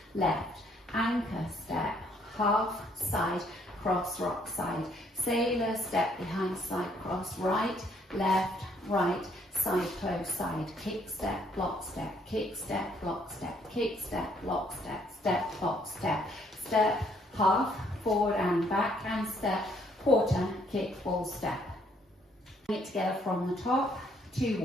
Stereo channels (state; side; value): normal; both; correlation 0.67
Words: left, anchor step, half, side, cross, rock, side. Sailor, step behind, side, cross, right, left, right, side, close, side. Kick, step, block, step, kick, step, block, step, kick, step, block, step, step, block, step. Step, half, forward and back, and step, quarter, kick, full step. Bring it together from the top, 2